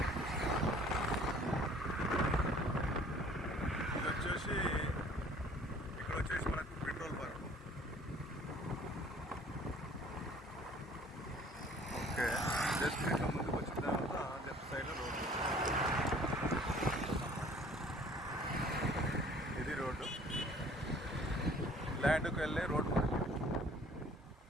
ఇక్కడ వచ్చేసి మనకు పెట్రోల్ బంక్. ఓకే, జస్ట్ ఇట్లా ముందుకు వచ్చిన తర్వాత లెఫ్ట్ సైడ్లో రోడ్డు. ఇది రోడ్డు, ల్యాండ్కి వెళ్ళే రోడ్డు మనకి.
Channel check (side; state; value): both; normal; correlation 0.53